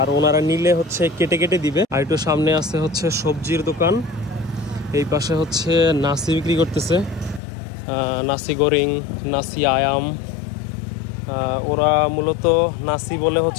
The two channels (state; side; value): drops out; right; at 7.4 s